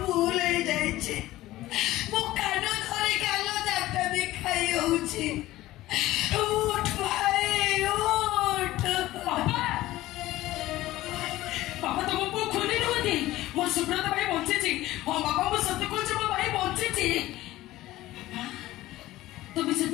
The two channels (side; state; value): right; quieter; 16.4 dB